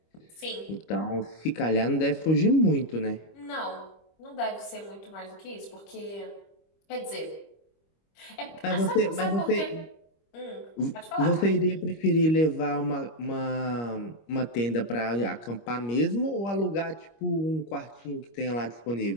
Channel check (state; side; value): late; right; 25 ms